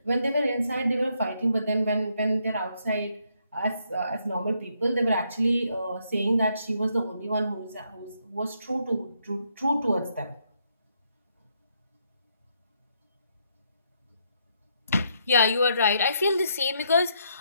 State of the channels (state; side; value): inverted; both; correlation -0.75